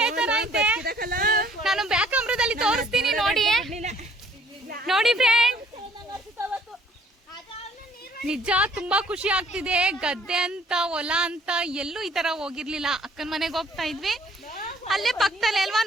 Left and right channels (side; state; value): both; normal; correlation 0.59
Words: ತರ ಐತೆ. ನಾನು ಬ್ಯಾಕ್ ಕ್ಯಾಮ್ರಾದಲ್ಲಿ ತೋರಿಸ್ತೀನಿ ನೋಡಿ. ನೋಡಿ ಫ್ರೆಂಡ್, ನಿಜ ತುಂಬಾ ಖುಷಿ ಆಗ್ತಿದೆ. ಗದ್ದೆ ಅಂತ ಹೊಲ ಅಂತ ಎಲ್ಲೂ ಈ ತರ ಹೋಗಿರ್ಲಿಲ್ಲ. ಅಕ್ಕನ ಮನೆಗೆ ಹೋಗ್ತಾ ಇದ್ವಿ, ಅಲ್ಲೇ ಪಕ್ಕದಲ್ಲೇ ಅಲ್ವಾ,